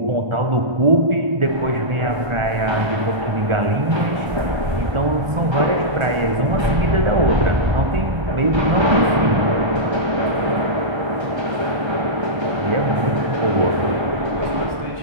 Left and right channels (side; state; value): left; late; 1.3 ms